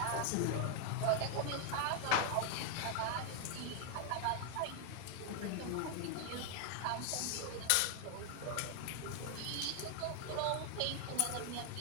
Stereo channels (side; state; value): both; different; correlation 0.00